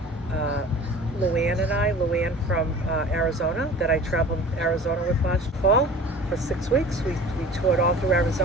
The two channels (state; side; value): normal; both; correlation 0.42